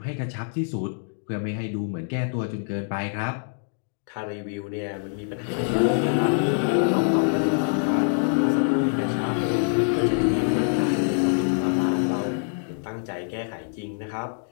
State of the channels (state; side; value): silent; right; digital silence